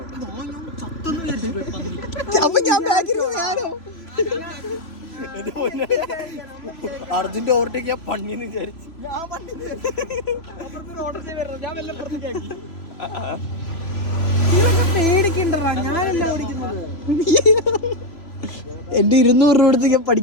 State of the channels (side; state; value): right; late; 3.0 ms